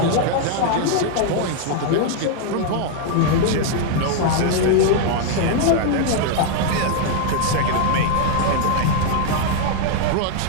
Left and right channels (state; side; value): different; both; correlation 0.00